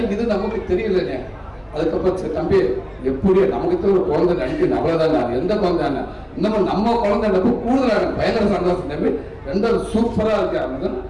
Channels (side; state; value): both; identical; correlation 1.00